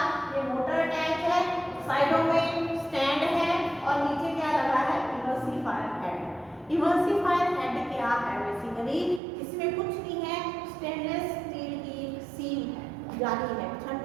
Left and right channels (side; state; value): left; drops out; at 9.2 s